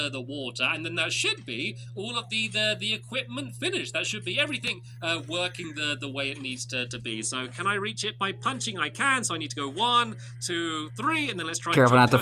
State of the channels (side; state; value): both; identical; correlation 1.00